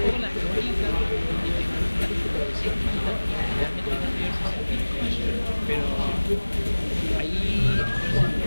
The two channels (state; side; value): inverted; both; correlation -1.00